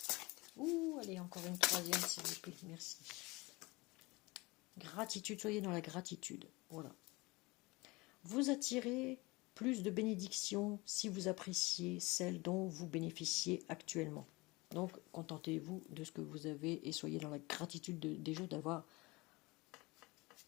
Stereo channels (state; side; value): quieter; right; 23.5 dB